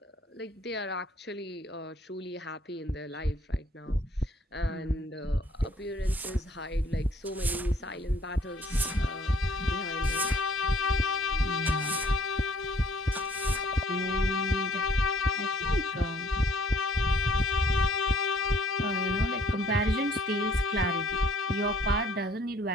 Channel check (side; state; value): both; normal; correlation 0.60